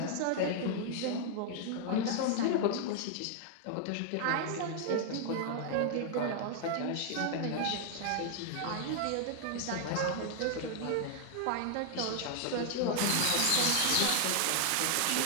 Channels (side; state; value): both; different; correlation 0.00